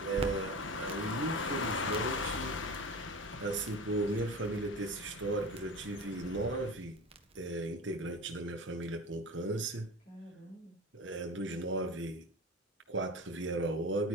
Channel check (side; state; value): both; normal; correlation 0.31